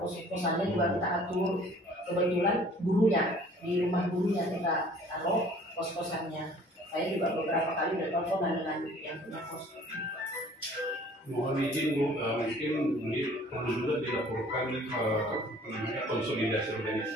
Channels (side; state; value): both; normal; correlation 0.52